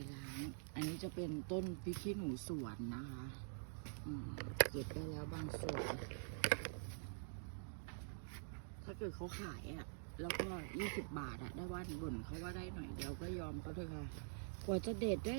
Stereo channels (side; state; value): left; silent; digital silence